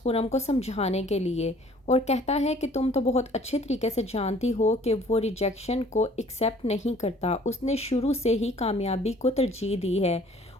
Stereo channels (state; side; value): normal; both; correlation 0.55